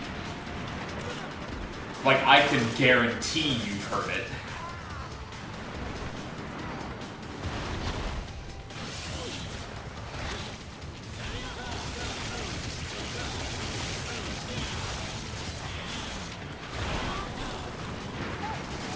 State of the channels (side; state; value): both; identical; correlation 1.00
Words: Like, I can guarantee you've heard it.